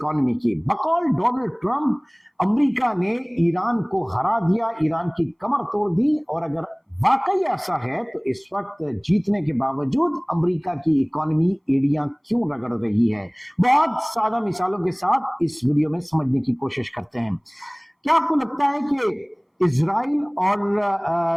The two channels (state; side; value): identical; both; correlation 1.00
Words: की। बकौल डोनाल्ड ट्रंप, अमेरिका ने ईरान को हरा दिया, ईरान की कमर तोड़ दी। और अगर वाकई ऐसा है तो इस वक्त जीतने के बावजूद अमेरिका की इकोनॉमी एड़ियां क्यों रगड़ रही है? बहुत सादा मिसालों के साथ इस वीडियो में समझने की कोशिश करते हैं। क्या आपको लगता है कि इजराइल और